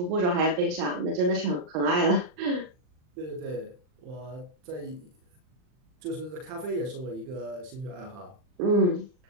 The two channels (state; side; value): late; left; 39 ms